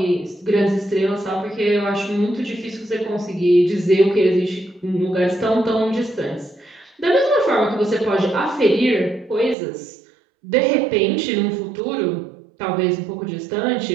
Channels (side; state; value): left; drops out; at 9.6 s